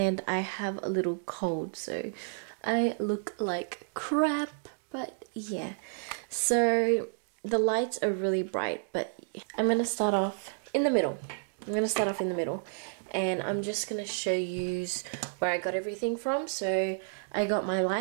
I have a little cold, so I look like crap, but yeah. So the lights are really bright, but I'm going to start off in the middle. And I'm just going to show you where I got everything from. So I got my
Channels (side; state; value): left; silent; digital silence